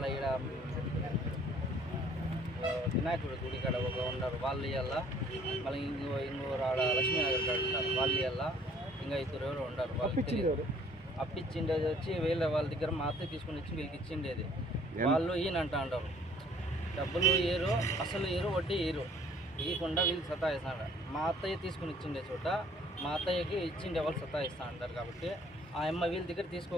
ఇక్కడ వినాయకుడి గుడి కాడ ఒక ఉన్నారు వాళ్ళు ఇవ్వాలా మళ్ళీ ఇంకోరు ఆడ లక్ష్మీనగర్ కాడ ఉంటారు వాళ్ళు ఇవ్వాలా ఇంకా ఇద్దరు ఎవరు ఉండరు వాళ్ళు అప్పిచ్చిండేది వచ్చి వీళ్ళ వాళ్ళ దగ్గర మా అత్తయ్య తీసుకుని వచ్చి వీళ్ళకి ఇచ్చిండేది వాళ్ళు ఈయనంట అంటారు డబ్బులు ఏరు అసలు ఏరు వడ్డీ ఏరు ఇవ్వకుండా వీళ్ళు సతాయిస్తాడు మా అత్తయ్య తీసుకుని ఇచ్చిండే చోట మా అత్తయ్యకి ఇచ్చిండే వాళ్ళు సతాయిస్తా అంటారు కాబట్టి ఆ అమ్మ వీళ్ళ దగ్గర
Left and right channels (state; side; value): normal; both; correlation 0.58